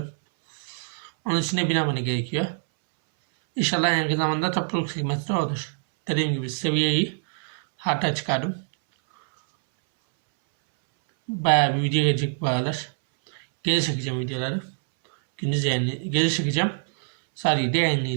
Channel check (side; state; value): left; silent; 62 dB below the other